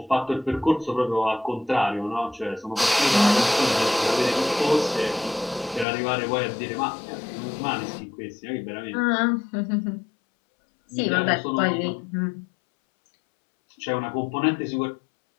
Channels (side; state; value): right; drops out; at 5.9 s